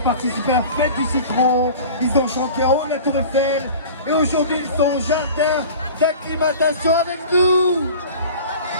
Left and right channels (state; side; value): inverted; both; correlation -0.39